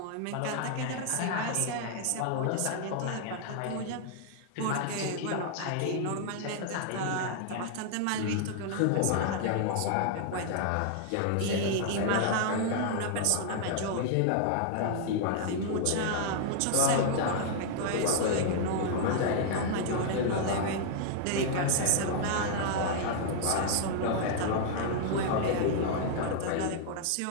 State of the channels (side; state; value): both; different; correlation -0.01